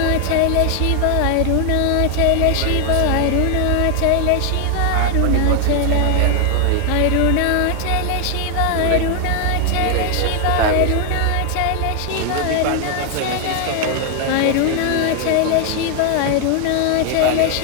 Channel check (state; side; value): different; both; correlation 0.00